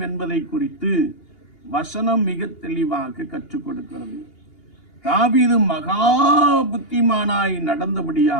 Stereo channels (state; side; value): late; right; 2.8 ms